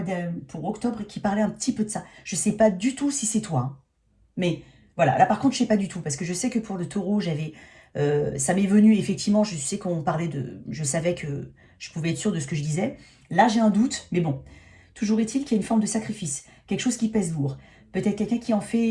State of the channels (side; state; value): both; identical; correlation 1.00